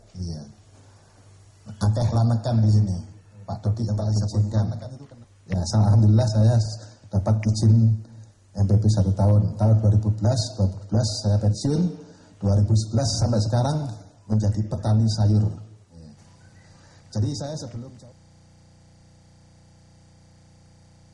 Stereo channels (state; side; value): identical; both; correlation 1.00